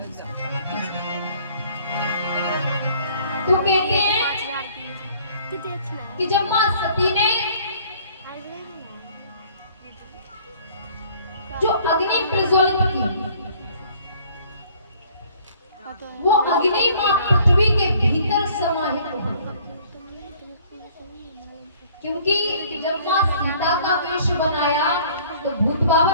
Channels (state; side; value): inverted; both; correlation -0.56